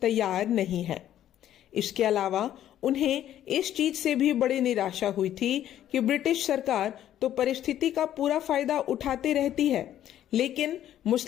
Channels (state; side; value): quieter; right; 11.6 dB